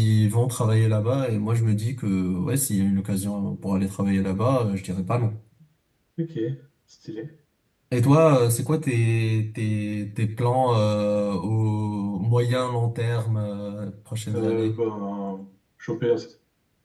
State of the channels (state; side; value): identical; both; correlation 1.00